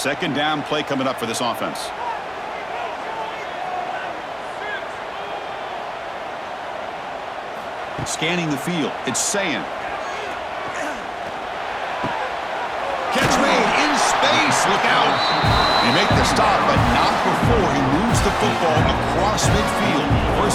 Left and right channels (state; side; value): identical; both; correlation 1.00